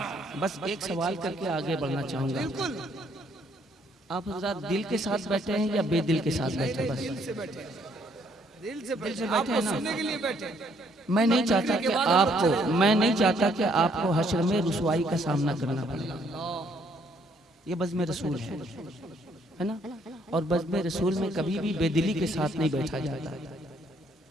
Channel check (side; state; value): both; normal; correlation 0.67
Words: बस एक सवाल करके आगे बढ़ना चाहूंगा। आप हज़रात दिल के साथ बैठे हैं या बेदिल के साथ बैठे? बस दिल से बैठे हैं ना। मैं नहीं चाहता कि आपको हश्र में रुसवाई का सामना करना पड़े। ये बज़्म रसूल है ना, और बज़्म रसूल में कभी भी बेदिली के साथ नहीं बैठा जाता।